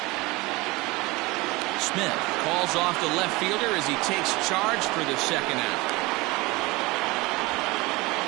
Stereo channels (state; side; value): quieter; left; 22.7 dB